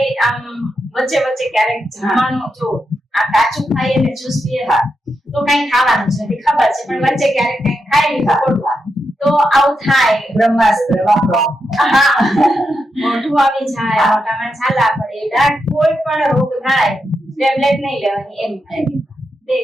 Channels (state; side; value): normal; both; correlation 0.85